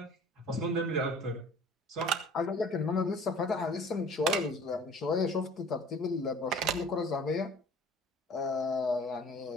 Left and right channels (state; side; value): normal; both; correlation 0.47